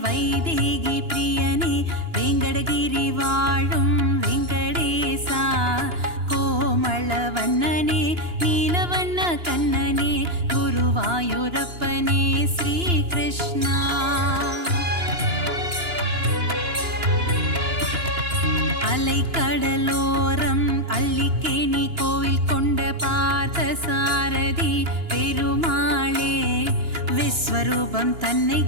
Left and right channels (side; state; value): left; late; 2.9 ms